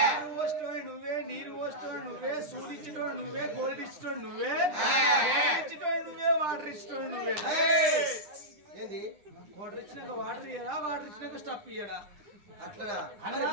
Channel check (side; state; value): left; late; 9.9 ms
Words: నువ్వు వస్తువు నువ్వే, నీరు వస్తువు నువ్వే, సూదిచ్చేటోడు నువ్వే, గోల్డ్ ఇచ్చేటోడు నువ్వే, ఇచ్చేటోడు నువ్వే, వాటర్ ఇచ్చేటోడు నువ్వే. ఏంది వాటర్ ఇచ్చినాక వాటర్ ఇయ్యడా, వాటర్ ఇచ్చినాక స్టఫ్ ఇయ్యడా? అట్లనా?